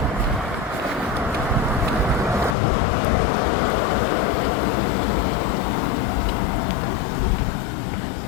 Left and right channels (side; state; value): right; drops out; at 2.6 s